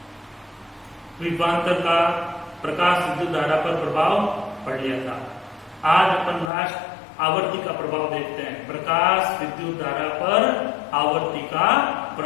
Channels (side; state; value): right; drops out; at 6.5 s